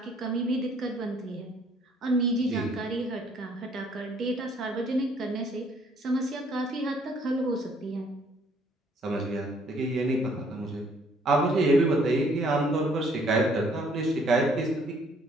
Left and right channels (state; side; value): normal; both; correlation 0.63